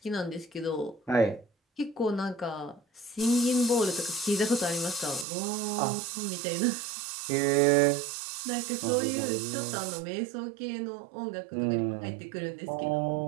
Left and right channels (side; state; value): left; drops out; at 5.2 s